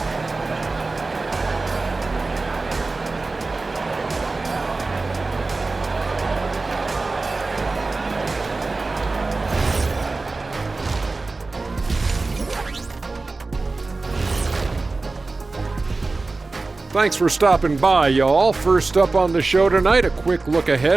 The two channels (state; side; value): quieter; left; 3.6 dB